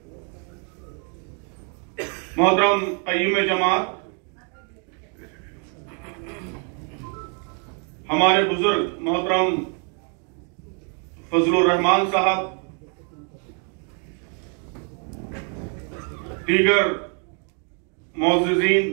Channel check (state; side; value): quieter; left; 39.7 dB